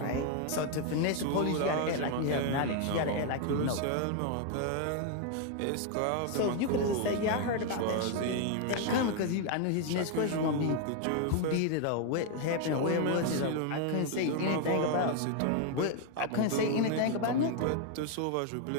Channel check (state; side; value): different; both; correlation 0.01